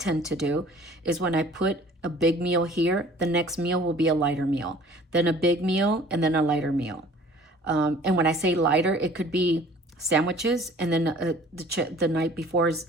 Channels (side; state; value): both; normal; correlation 0.50